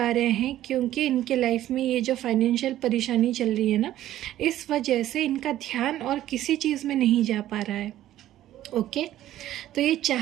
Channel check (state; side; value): quieter; left; 13.3 dB